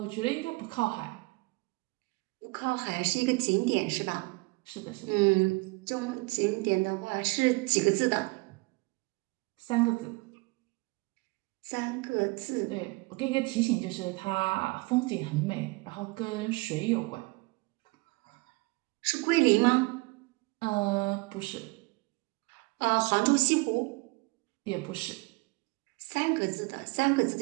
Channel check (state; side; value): quieter; left; 26.4 dB